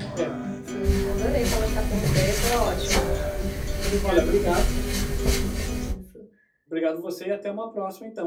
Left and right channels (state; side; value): identical; both; correlation 1.00